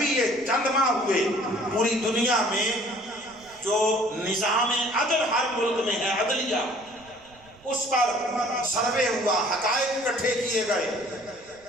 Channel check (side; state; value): right; noise; rumble, 28 dB below the sound